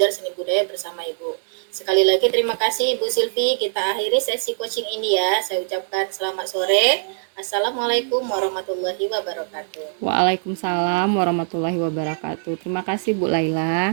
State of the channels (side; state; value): left; silent; digital silence